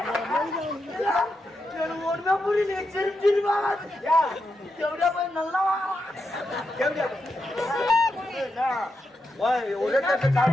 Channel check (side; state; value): both; normal; correlation 0.85